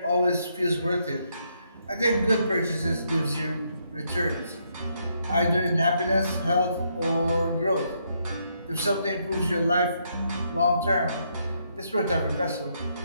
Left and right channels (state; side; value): inverted; both; correlation -0.76